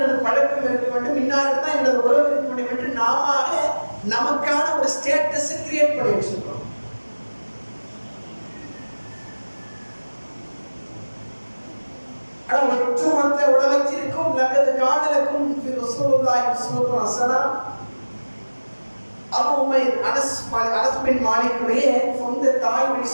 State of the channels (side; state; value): both; inverted; correlation -1.00